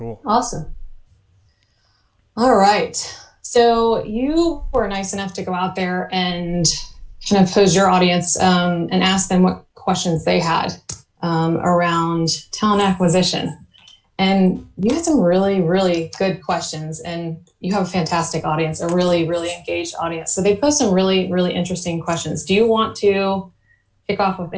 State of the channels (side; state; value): both; identical; correlation 1.00